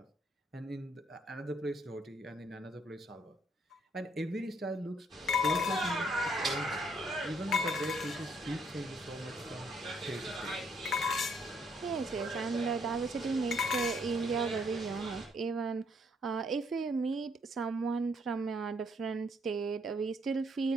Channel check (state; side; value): normal; both; correlation 0.69